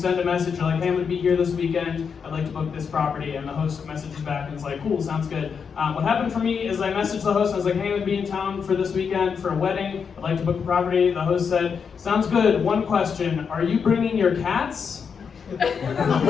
a message, you're like, hey, I'm going to be here this weekend, I'd like to book this property, and the host messages back and is like, cool, sounds good. What happened for me is I messaged the host, and I was like, hey, I'm going to be in town for this weekend for a wedding, I'd like to book a property. The host said, sounds good, one question, are you bringing your cats? And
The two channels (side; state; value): right; quieter; 6.3 dB